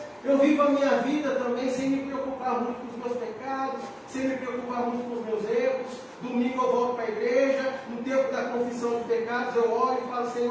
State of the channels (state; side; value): identical; both; correlation 1.00